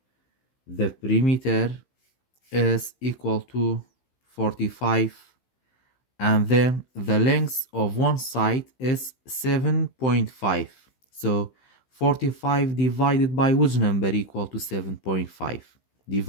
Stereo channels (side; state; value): right; late; 16 ms